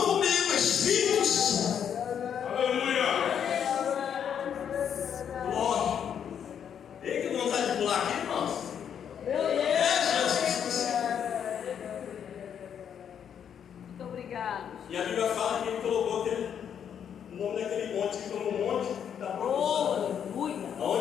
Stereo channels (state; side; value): quieter; right; 8.4 dB